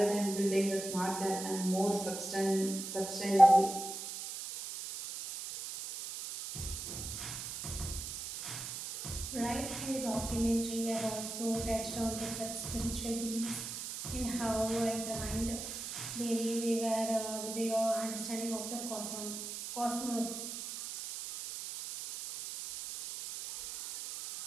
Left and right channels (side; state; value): right; noise; hiss, 7 dB below the sound